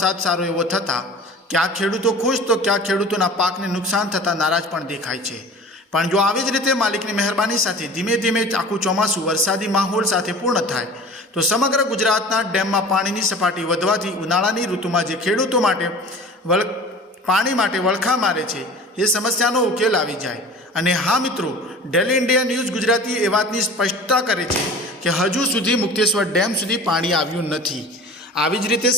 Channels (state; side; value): normal; both; correlation 0.41